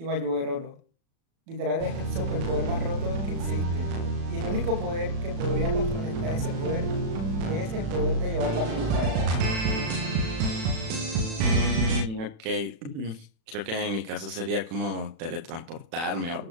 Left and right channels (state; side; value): late; left; 36 ms